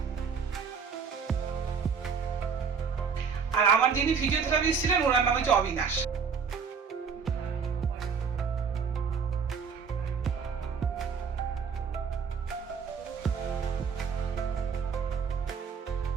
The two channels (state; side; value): quieter; left; 6.1 dB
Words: আর আমার যিনি ফিজিওথেরাপিস্ট ছিলেন ওনার নাম হচ্ছে অবিনাশ।